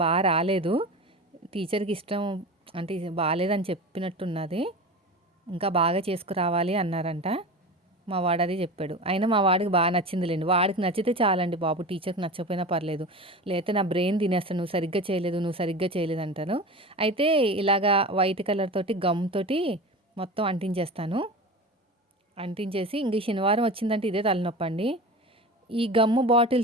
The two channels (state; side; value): normal; both; correlation 0.30